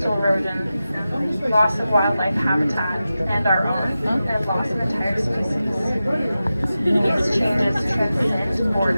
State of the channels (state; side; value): inverted; both; correlation -0.93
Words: erosion, loss of wildlife habitat, and our own, and loss of entire species. These changes transcend